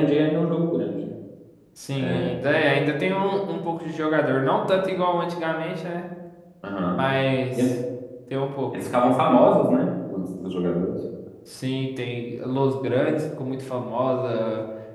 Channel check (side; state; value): both; identical; correlation 1.00